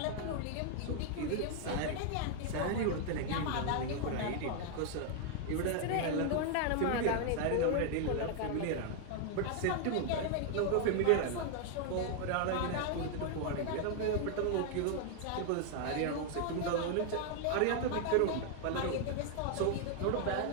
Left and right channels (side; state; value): both; different; correlation 0.00